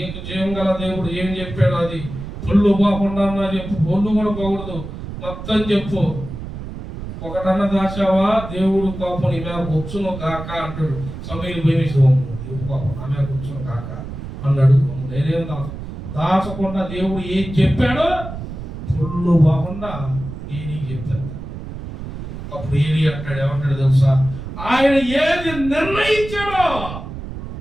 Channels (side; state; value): right; noise; rumble, 9 dB below the sound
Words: జీవం గల దేవుడు ఏం చెప్పాడు అది పొల్లు పోకుండా చెప్పు, పొల్లు కూడా పోకూడదు, మొత్తం చెప్పు. ఒకటన్నా దాచావా దేవుడు కోపం నీ మీద వచ్చును కాక అంటాడు. సమూయేలు భయమేసి, దేవుడు కోపం నా మీద వచ్చును కాక అన్నాడు. నేనేం దాచకుండా దేవుడు ఏం చెప్పాడో పొల్లు పోకుండా ఏలికి చెప్తాడు. అప్పుడు ఏలి అంటాడు, ఏమంటాడు తెలుసా, ఆయన ఏది నిర్ణయించాడో